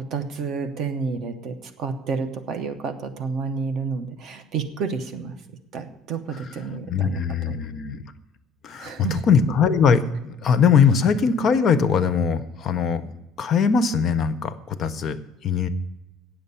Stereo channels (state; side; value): quieter; right; 4.4 dB